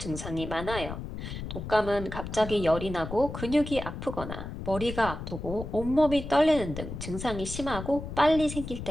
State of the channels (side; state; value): left; noise; rumble, 8 dB below the sound